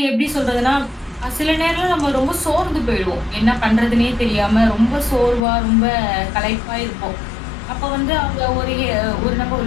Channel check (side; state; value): right; drops out; at 5.4 s